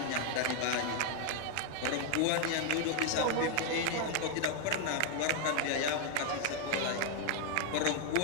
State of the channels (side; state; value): both; different; correlation 0.00